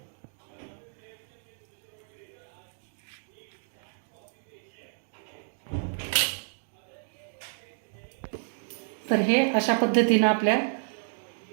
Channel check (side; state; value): left; silent; digital silence